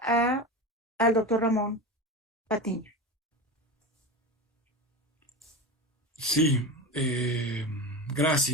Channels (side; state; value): both; normal; correlation 0.25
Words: al doctor Ramón Patiño. Sí,